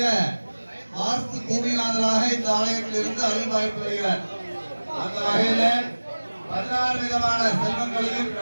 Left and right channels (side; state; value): both; inverted; correlation -1.00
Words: வாஸ்து பூமிநாதராக இந்த ஆலயத்தில் இருந்து அருள் வாய்ப்பு வருகிறார். அந்த வகையில் 16 விதமான செல்வங்களையும்